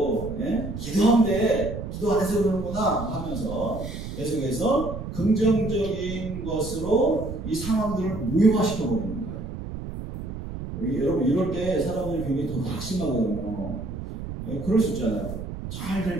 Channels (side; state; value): right; noise; rumble, 8 dB below the sound